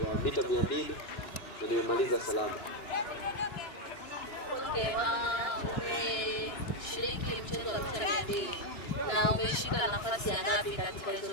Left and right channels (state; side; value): late; right; 2.9 ms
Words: mita 200 na nimemaliza salama. Okay, umeshiriki mchezo wa mita 200 na umeshika nafasi ya ngapi katika